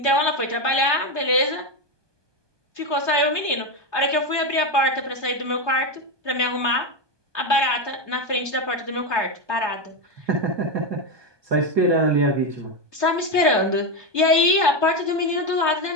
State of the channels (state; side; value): late; left; 1.2 ms